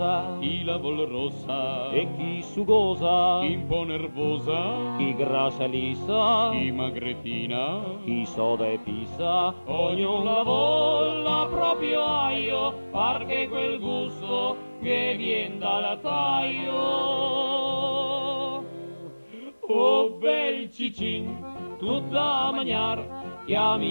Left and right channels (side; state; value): both; inverted; correlation -1.00